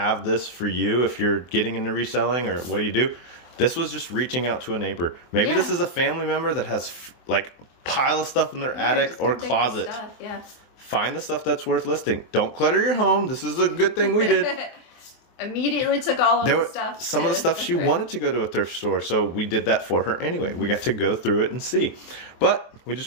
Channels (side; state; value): right; late; 24 ms